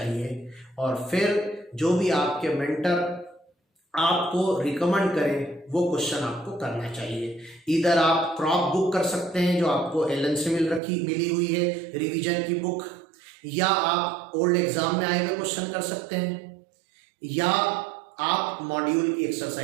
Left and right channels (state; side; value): drops out; left; at 10.8 s